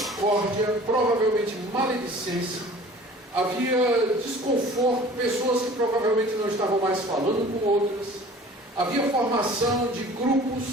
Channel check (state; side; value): normal; both; correlation 0.46